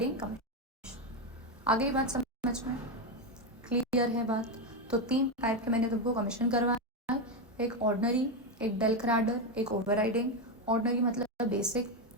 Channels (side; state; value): both; normal; correlation 0.09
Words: कमीशन। आ गई बात समझ में, क्लियर है बात? तो 3 टाइप के मैंने तुमको कमीशन करवाया, एक ऑर्डनरी, एक डेल क्रैडर, एक ओवरराइडिंग। ऑर्डनरी मतलब बेसिक